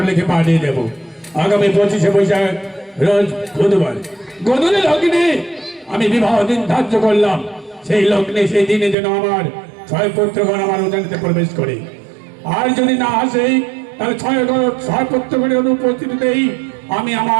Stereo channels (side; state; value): left; drops out; at 9.0 s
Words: লিখে পাঠিয়ে দেব। আগামী 25শে বৈশাখ রোজ বুধবার গোধূলি লগ্নে আমি বিবাহ দিন ধার্য করলাম। সেই লগ্নে সেই দিনে যেন আমার ছয় পত্রগণ আমার উদ্যানেতে প্রবেশ করে। আর যদি না আসে তাহলে ছয় পত্রগণের অনুপস্থিতিতেই আমি